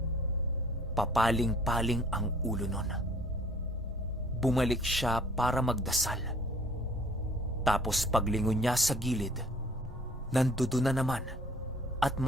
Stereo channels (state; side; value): normal; both; correlation 0.55